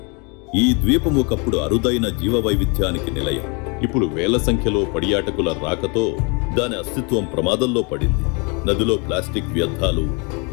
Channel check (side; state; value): right; quieter; 32.2 dB